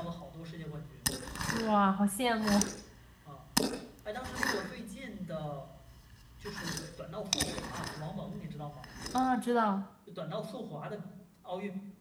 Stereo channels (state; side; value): identical; both; correlation 1.00